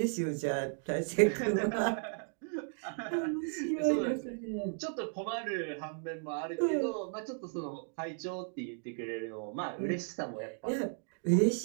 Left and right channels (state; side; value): silent; left; 54 dB below the other